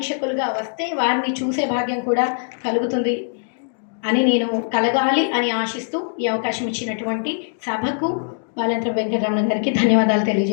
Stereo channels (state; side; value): silent; right; digital silence